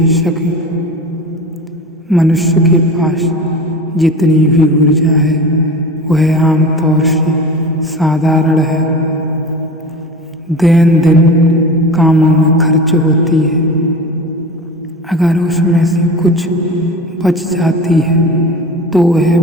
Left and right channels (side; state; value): both; normal; correlation 0.33